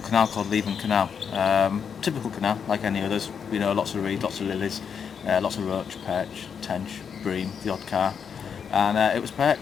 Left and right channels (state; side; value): quieter; right; 7.0 dB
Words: canal called Leven Canal. Typical canal, like any others, you know, lots of reed, lots of lilies, lots of roach, perch, tench, bream, the odd carp, and it was